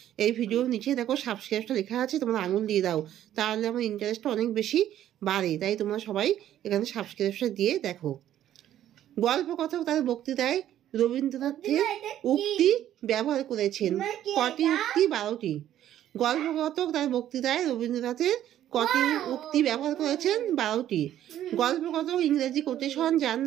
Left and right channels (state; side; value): quieter; left; 11.7 dB